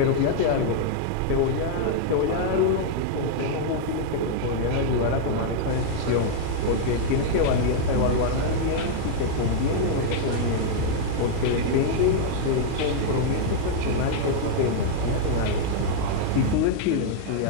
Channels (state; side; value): different; both; correlation -0.01